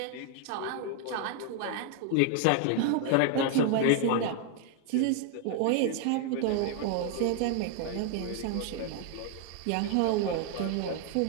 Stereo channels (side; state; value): both; different; correlation 0.00